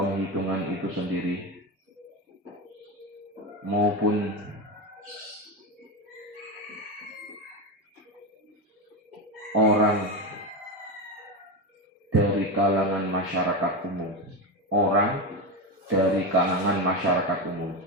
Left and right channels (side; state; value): both; normal; correlation 0.16